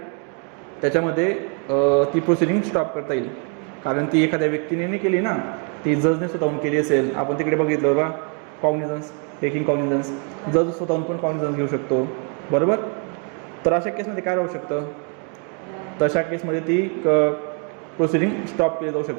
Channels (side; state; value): left; quieter; 39.2 dB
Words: त्याच्यामध्ये ती प्रोसिडिंग स्टॉप करता येईल, कारण ती एखाद्या व्यक्तीने नाही केली ना, ती जजने स्वतःहून केली असेल. आपण तिकडे बघितलं बघा कॉग्निझन्स, टेकिंग कॉग्निझन्स, जज स्वतःहून पण कॉग्निझन्स घेऊ शकतो, बरोबर. तर अशा केसमध्ये काय राहू शकतं? तशा केसमध्ये ती प्रोसिडिंग स्टॉप केली जाऊ